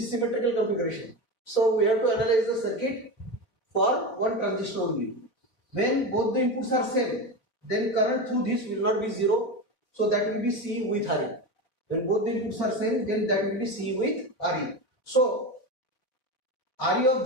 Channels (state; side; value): late; right; 4.7 ms